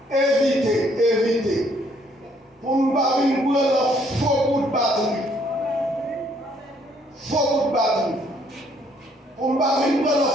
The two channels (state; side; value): normal; both; correlation 0.66